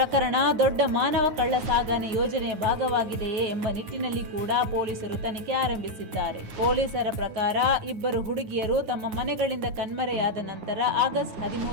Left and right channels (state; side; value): late; left; 9.5 ms